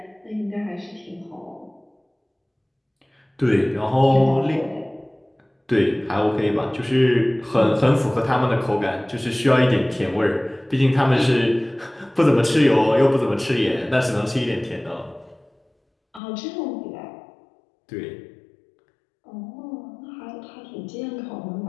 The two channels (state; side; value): drops out; right; at 16.2 s